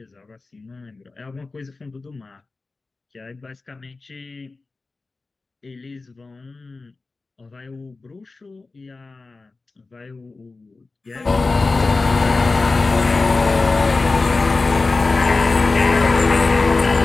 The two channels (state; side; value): quieter; right; 3.7 dB